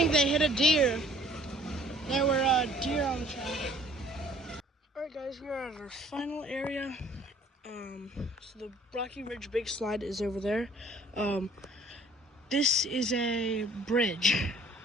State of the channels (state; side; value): normal; both; correlation 0.56